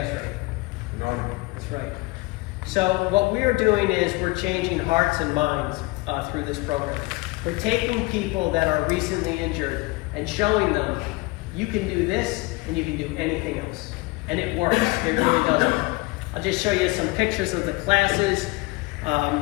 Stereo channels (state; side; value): quieter; right; 23.4 dB